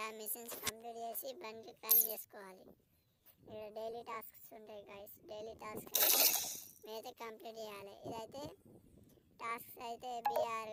ఆ మిషన్స్ కంప్లీట్ చేసి బండి క్లైమ్ చేసుకోవాలి. ఇక్కడ డైలీ టాస్క్స్ ఉంటాయి గైస్. డైలీ టాస్క్ మీరైతే కంప్లీట్ చేయాలి. ఇదైతే టాస్క్స్ అయితే బీఆర్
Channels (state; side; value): identical; both; correlation 1.00